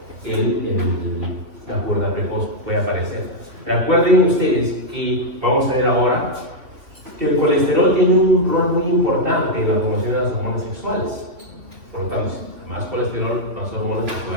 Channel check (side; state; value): left; late; 2.9 ms